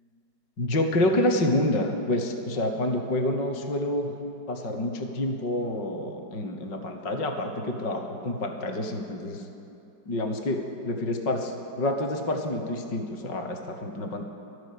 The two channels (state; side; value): late; right; 5.3 ms